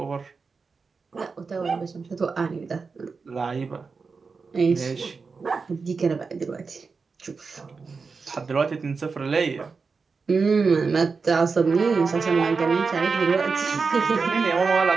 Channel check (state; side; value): quieter; left; 4.8 dB